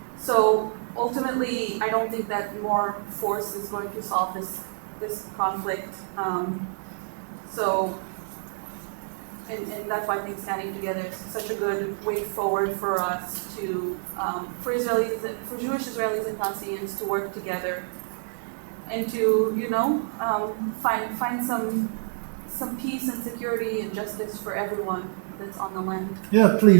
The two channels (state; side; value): silent; left; digital silence